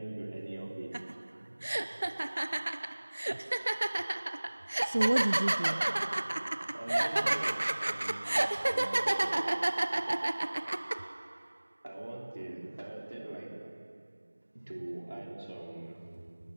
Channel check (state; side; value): inverted; both; correlation -1.00